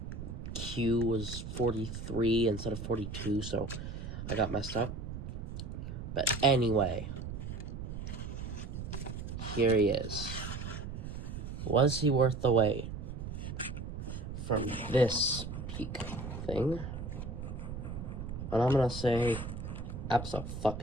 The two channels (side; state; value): right; noise; rumble, 7 dB below the sound